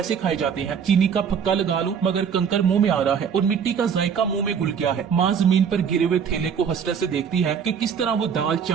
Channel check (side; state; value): left; quieter; 7.2 dB